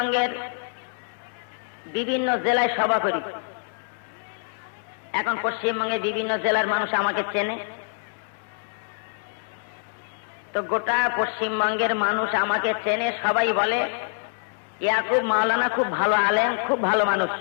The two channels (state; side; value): silent; right; 61 dB below the other